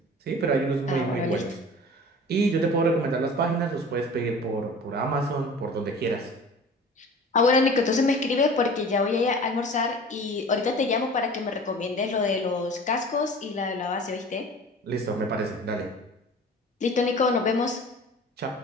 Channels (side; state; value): both; normal; correlation 0.41